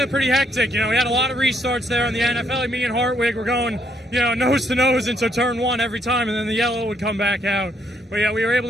pretty hectic. You know, we had a lot of restarts there in the NFL. Me and Hartwig were going, you know, nose to nose into turn 1 every time, and then the yellow would come back out. But yeah, we were able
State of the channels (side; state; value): both; normal; correlation 0.72